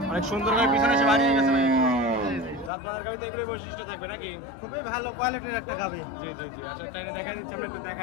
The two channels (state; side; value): drops out; right; at 2.7 s